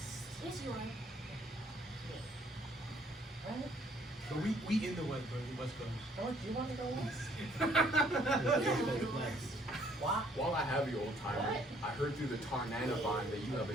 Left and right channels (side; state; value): both; normal; correlation 0.63